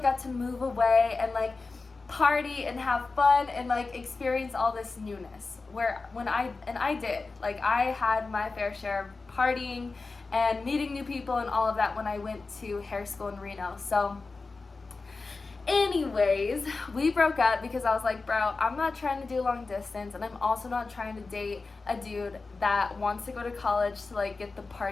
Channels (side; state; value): right; quieter; 3.9 dB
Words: got to move away and like party and have fun and like experience all this newness, where I did, like, I had my fair share of partying and meeting new people and all of that when I went to hair school in Reno. So anyways, we broke up because I was like, bro, I'm not trying to do long distance, and I'm also not trying to date a dude that wants to go to college to like get the